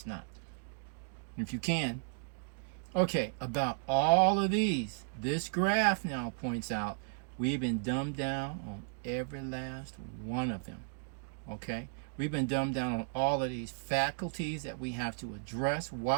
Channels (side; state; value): left; silent; digital silence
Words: not. If you can. Okay, about all of these, this graph now points out we've been dumbed down on every last one of them. Okay, we've been dumbed down on all of these faculties that we have to address,